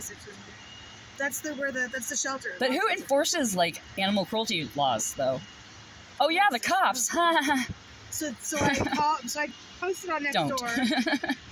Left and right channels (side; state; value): both; identical; correlation 1.00